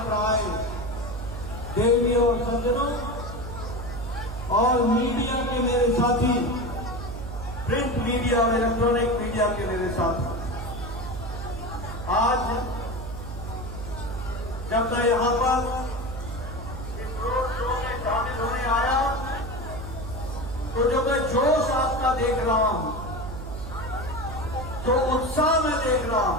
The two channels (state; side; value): noise; right; hum, 8 dB below the sound